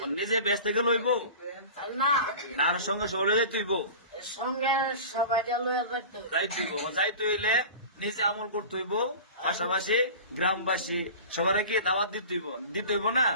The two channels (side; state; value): both; inverted; correlation -0.36